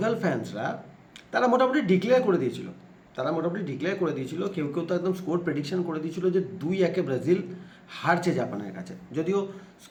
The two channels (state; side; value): identical; both; correlation 1.00